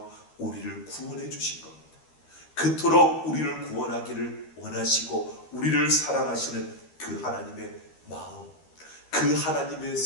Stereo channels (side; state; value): right; late; 13 ms